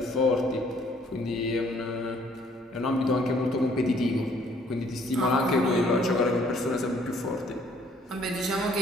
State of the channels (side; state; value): both; normal; correlation 0.62